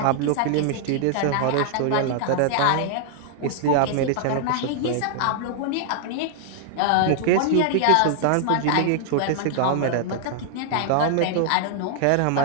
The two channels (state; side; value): different; both; correlation 0.00